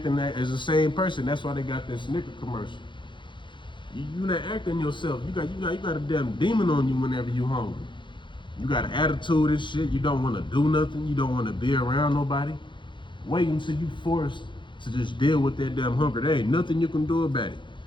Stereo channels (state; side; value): late; right; 0.23 ms